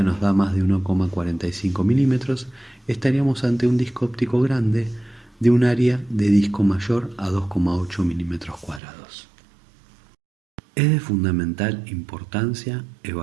nos da más de 1,45 milímetros, estaríamos ante un disco óptico grande de un área de disco mayor a 2,8 milímetros cuadrados. Es de fundamental importancia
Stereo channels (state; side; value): drops out; left; at 8.8 s